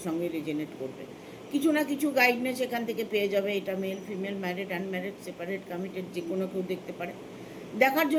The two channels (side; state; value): both; identical; correlation 1.00